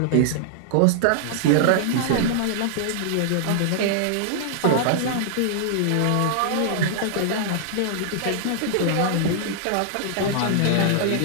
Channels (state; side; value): different; both; correlation -0.01